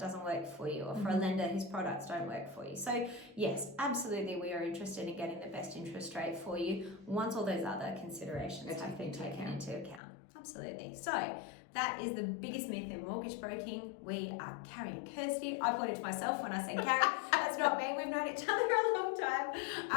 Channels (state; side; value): drops out; right; at 10.0 s